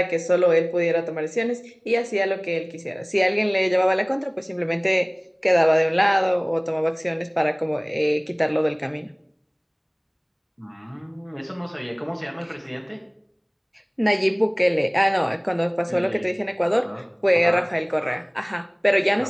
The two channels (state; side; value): identical; both; correlation 1.00